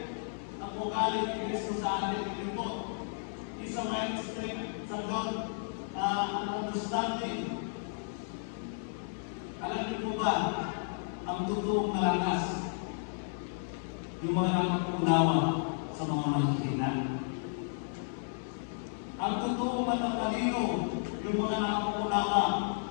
ang ugali ni Kristo sa atin. Ito po, isa mighty strength sa God, ang understanding. Alam niyo po ba, ang totoong malakas, yung mga nakakaunawa sa mga mahihina. Ang totoong matatalino, yung mga nakakaunawa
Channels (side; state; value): right; silent; digital silence